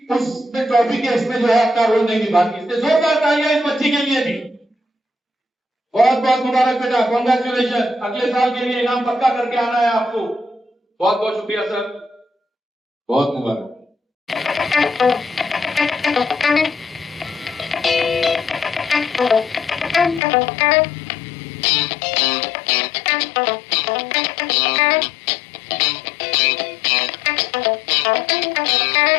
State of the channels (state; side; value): drops out; right; at 20.2 s